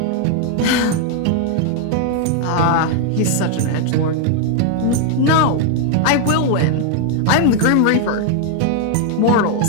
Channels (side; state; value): both; different; correlation 0.00